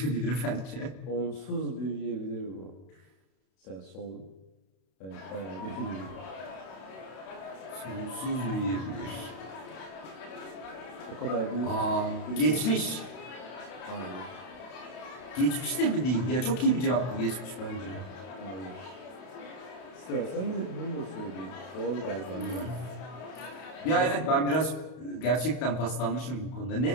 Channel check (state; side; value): late; right; 32 ms